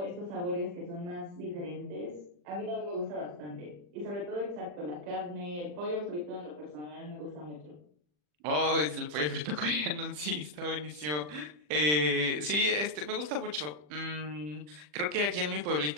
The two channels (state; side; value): late; left; 40 ms